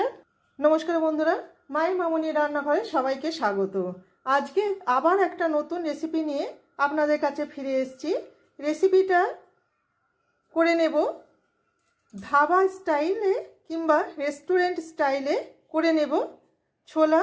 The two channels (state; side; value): identical; both; correlation 1.00